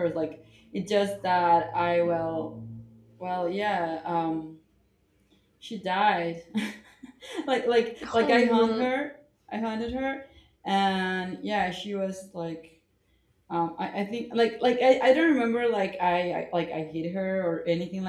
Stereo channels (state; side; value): identical; both; correlation 1.00